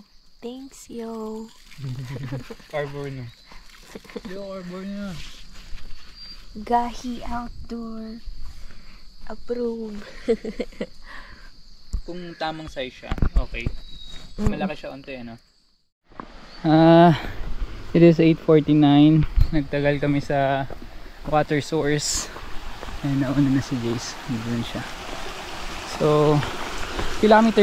Thanks, yo. Arbor na. Yo, arbor na. Gahi Outdoor. Approve. Kung tamang size siya, okay. Mm. Malaki siya onte, ano? It is 8:49. Nagtagal kami sa water source. Ayun, nauna na si Jace. Doon siya. So,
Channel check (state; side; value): identical; both; correlation 1.00